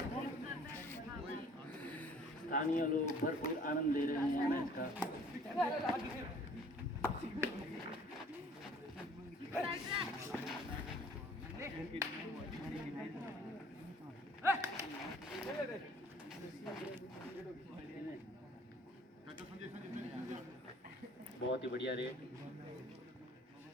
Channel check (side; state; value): both; normal; correlation 0.54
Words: स्थानीय लोग भरपूर आनंद ले रहे हैं मैच का। बहुत ही बढ़िया रेट।